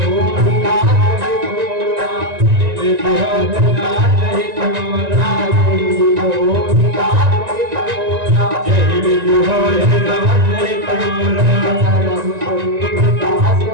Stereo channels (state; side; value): late; left; 1.9 ms